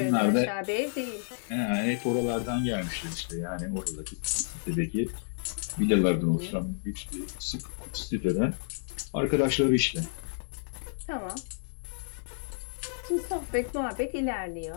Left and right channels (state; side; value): silent; right; digital silence